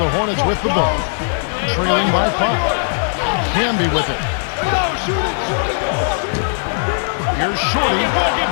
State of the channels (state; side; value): silent; right; 67 dB below the other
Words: Hornets with the ball, trailing by 5. Camby with it. Here's Shorty,